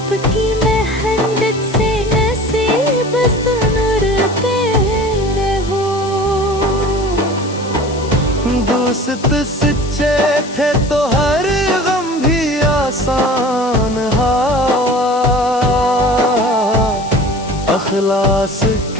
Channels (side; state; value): left; noise; hiss, 17 dB below the sound